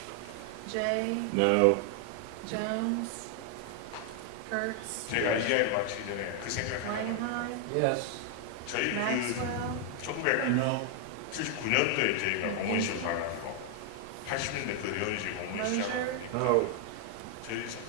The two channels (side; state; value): both; different; correlation 0.00